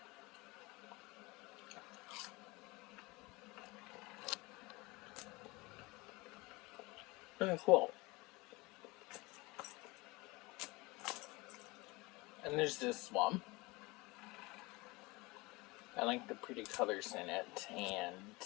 Pretty cool. And there's this one. I like the pretty colors in it,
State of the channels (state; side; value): quieter; right; 23.6 dB